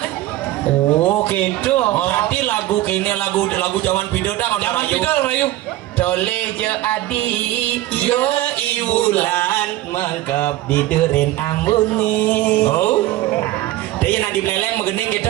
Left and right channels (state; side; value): quieter; left; 15.6 dB